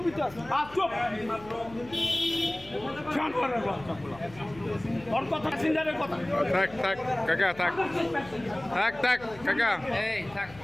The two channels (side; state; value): left; noise; hum, 20 dB below the sound